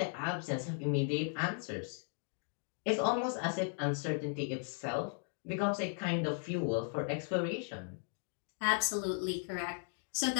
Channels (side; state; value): right; silent; 53 dB below the other